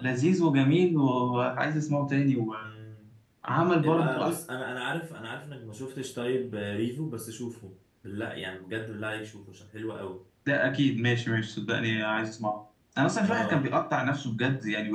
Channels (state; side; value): identical; both; correlation 1.00